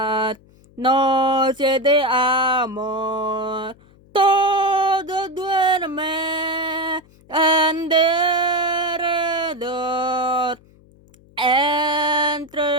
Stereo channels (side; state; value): left; noise; hum, 28 dB below the sound